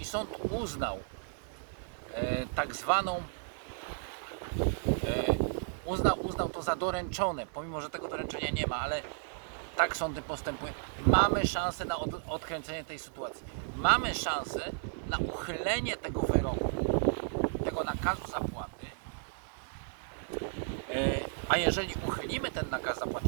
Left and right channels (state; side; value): silent; left; 55 dB below the other